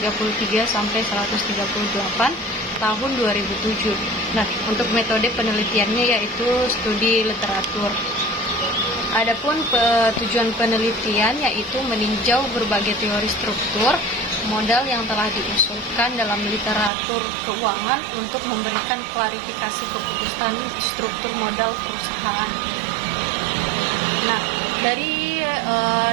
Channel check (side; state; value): left; drops out; at 16.9 s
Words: sampai 138 tahun 2007. Nah, untuk metode penelitiannya yaitu studi literatur. Adapun tujuan penelitian yaitu meninjau berbagai teori struktur modal yang telah diusulkan dalam literatur keuangan untuk memberikan klarifikasi keputusan struktur modal perusahaan. Nah, dari